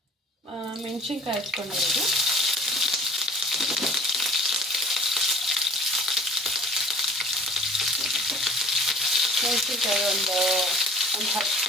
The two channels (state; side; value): normal; both; correlation 0.48